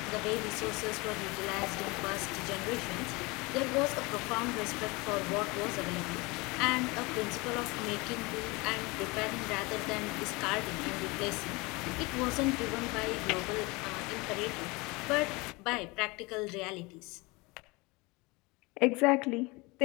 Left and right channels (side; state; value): right; quieter; 25.1 dB